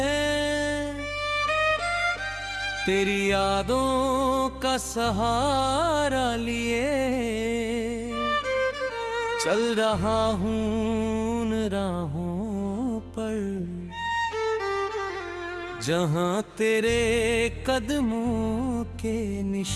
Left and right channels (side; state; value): both; identical; correlation 1.00